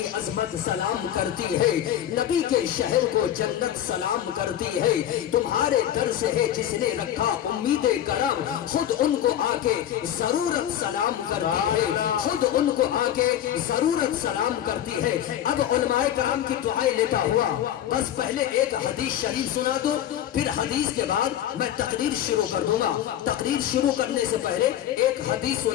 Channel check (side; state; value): right; quieter; 11.2 dB